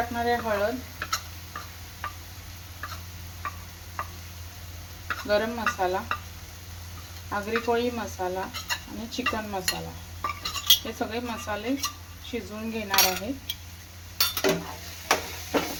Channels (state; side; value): identical; both; correlation 1.00